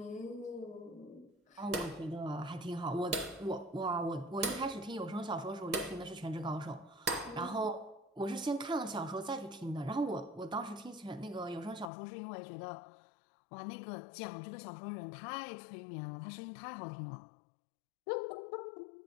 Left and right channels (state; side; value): drops out; right; at 11.9 s